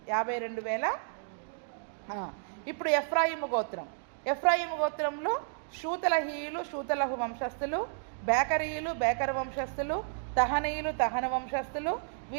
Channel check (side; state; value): left; silent; digital silence